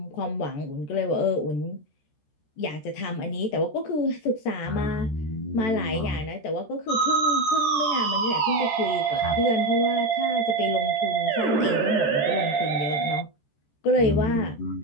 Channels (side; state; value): right; late; 14 ms